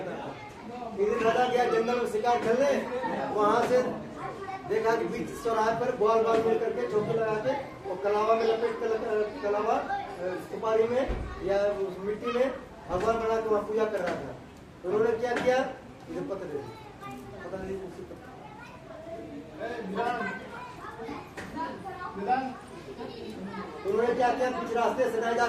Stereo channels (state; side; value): identical; both; correlation 1.00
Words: था। एक दिन राजा गया जंगल में शिकार खेलने, वहां से देखा कि बीच चौराहे पर बाल मिल करके चौकी लगा के वो कलावा में लपेट कर, कलावा सुपारी में या उस मिट्टी में भगवान बना के वहाँ पूजा कर रहा था। तो उन्होंने क्या किया? मुझे पता नहीं उन्होंने क्या किया? बीच रास्ते से नहीं जा